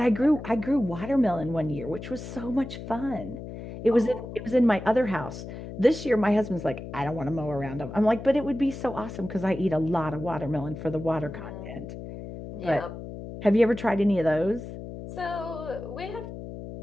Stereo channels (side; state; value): left; noise; hum, 10 dB below the sound